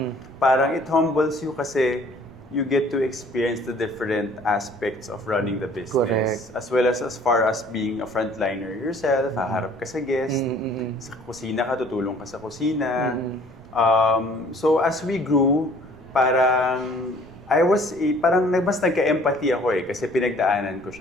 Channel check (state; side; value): noise; right; rumble, 23 dB below the sound